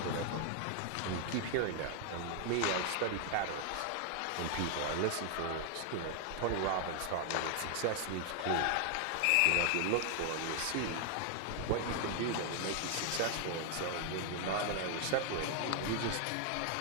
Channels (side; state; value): both; different; correlation 0.00